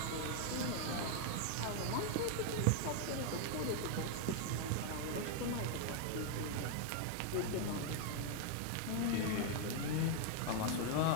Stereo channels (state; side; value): different; both; correlation 0.00